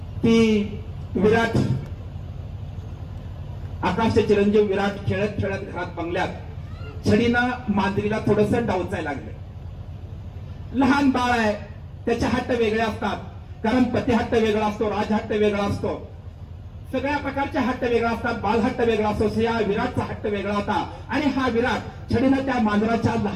की विराट, आकाशचे चिरंजीव विराट खेळत खेळत घरात बंगल्यात छडीनं मांजरीला थोडस डावचायला लागले. लहान बाळ आहे, त्याचे हट्ट वेगळे असतात, कारण पती हट्ट वेगळा असतो, राजहट्ट वेगळा असतो, सगळ्या प्रकारचे हट्ट वेगळा असतात, बालहट्ट वेगळा असतो. या विराटचा हट्ट वेगळा होता, आणि हा विराट छडीनं त्या मांजराच्या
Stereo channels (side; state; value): both; identical; correlation 1.00